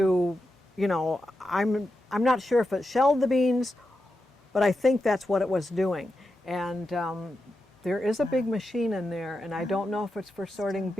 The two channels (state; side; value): normal; both; correlation 0.88